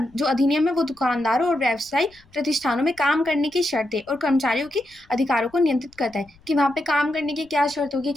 जो अधिनियम है वो दुकानदारों और व्यवसायिक प्रतिष्ठानों में काम करने की शर्तें और कर्मचारियों के अधिकारों को नियंत्रित करता है कि वहाँ पे काम करने की क्या शर्त होगी,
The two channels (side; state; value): left; noise; rumble, 30 dB below the sound